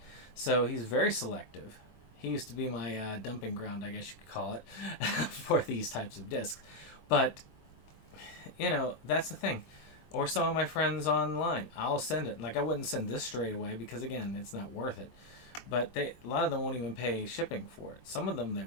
So he's very selective. He used to be my dumping ground, I guess you could call it, for these types of discs. But, you know, that's the thing. Or some of my friends online. I'll send it. Like, I wouldn't send this straight away because, again, it's not worth it. But a lot of them won't even pay shipping for it. Some of them they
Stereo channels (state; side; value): late; right; 22 ms